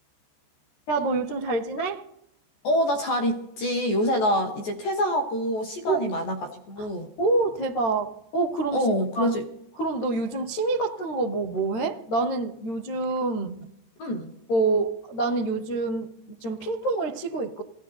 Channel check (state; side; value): late; right; 14 ms